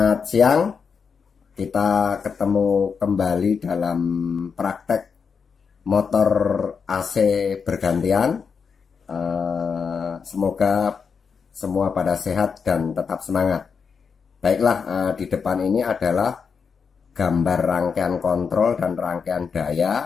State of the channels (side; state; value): right; quieter; 5.9 dB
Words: siang, kita ketemu kembali dalam praktek motor AC bergantian. Semoga semua pada sehat dan tetap semangat. Baiklah, di depan ini adalah gambar rangkaian kontrol dan rangkaian daya